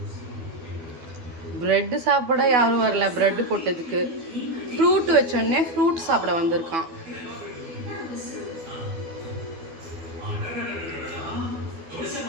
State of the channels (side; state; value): left; late; 12 ms